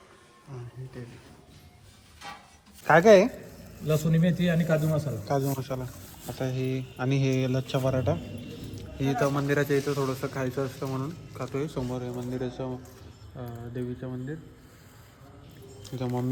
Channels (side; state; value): both; identical; correlation 1.00